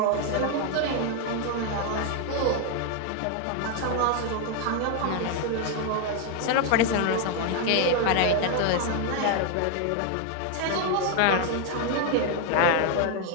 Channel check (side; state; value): both; different; correlation 0.00